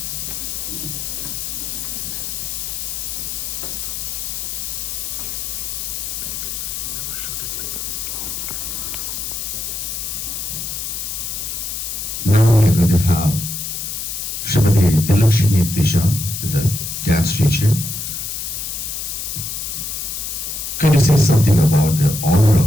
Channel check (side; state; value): left; noise; hiss, 4 dB below the sound